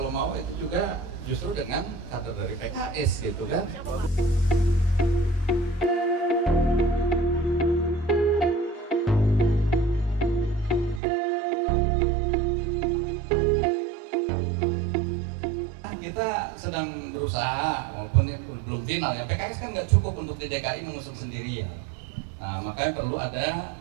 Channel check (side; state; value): left; drops out; at 11.0 s